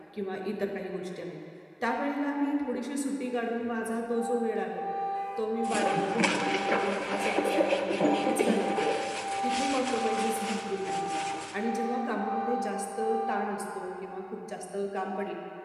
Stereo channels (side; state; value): both; identical; correlation 1.00